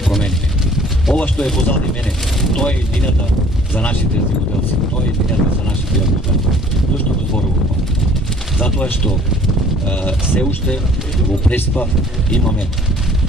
Ова што е позади мене, тоа е иднината за нашите земјоделци, тоа е иднината за нашите јаготари. Зошто го зборувам ова? Затоа што се уште во Преспа имаме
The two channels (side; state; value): both; normal; correlation 0.54